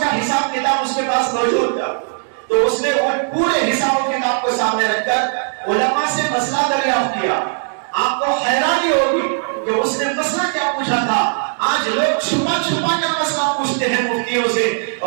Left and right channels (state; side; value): silent; left; 62 dB below the other